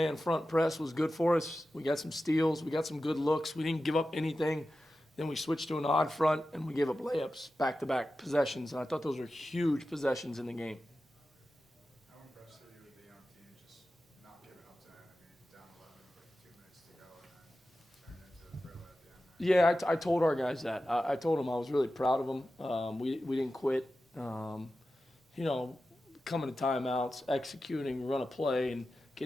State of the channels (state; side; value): normal; both; correlation 0.93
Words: front press was good for us. We got some steals, we got some good looks. We didn't give up anything. Then we switched to an odd front, and we gave up layups, back-to-back possessions, and I thought those were huge possessions in the game. How impressed are you with the young team just not giving up to it? I mean, down 11 with 2 minutes to go and then turn into a thriller at the end. Yeah, I told our guys that. I told them I was really proud of them. We didn't quit. Coming to timeouts, executing, run a play, and